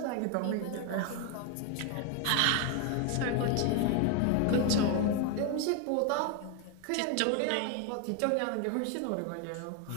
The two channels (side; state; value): both; different; correlation 0.01